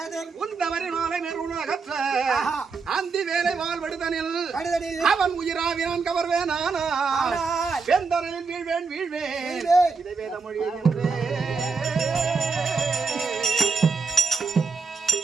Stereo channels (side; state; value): left; quieter; 4.7 dB